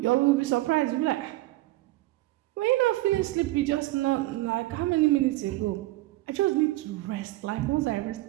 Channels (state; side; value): quieter; left; 18.2 dB